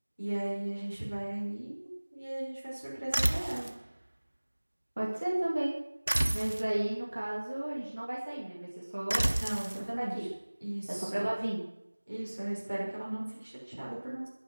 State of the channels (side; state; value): both; inverted; correlation -1.00